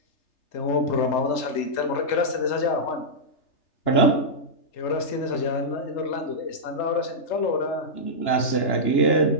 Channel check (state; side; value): late; right; 3.3 ms